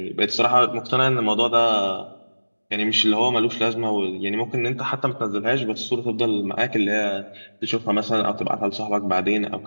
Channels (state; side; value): inverted; both; correlation -1.00